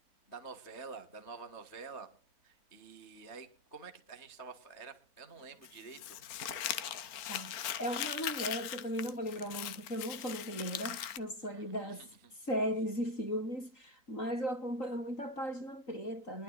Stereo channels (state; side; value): late; right; 4.3 ms